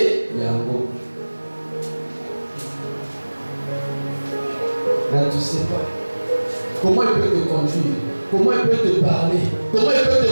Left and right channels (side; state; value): both; inverted; correlation -1.00